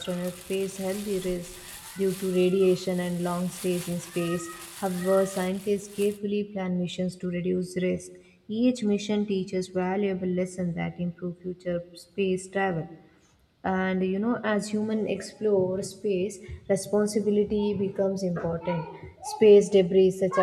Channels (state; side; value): identical; both; correlation 1.00